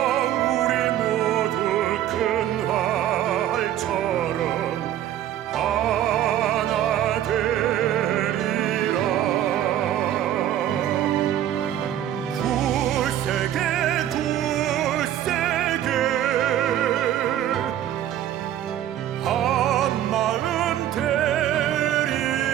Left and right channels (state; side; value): quieter; left; 11.6 dB